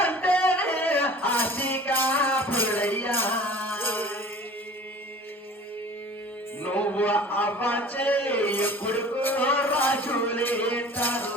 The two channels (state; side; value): normal; both; correlation 0.44